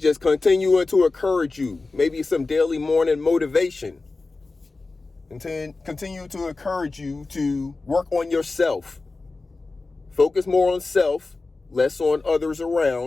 just continuing to encourage you. Maybe some daily morning motivation. And to continue to encourage you to work on yourself. Focus more on self, less on others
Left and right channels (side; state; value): right; quieter; 3.6 dB